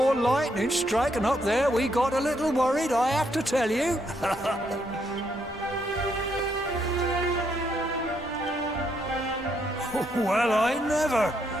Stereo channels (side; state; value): both; normal; correlation 0.75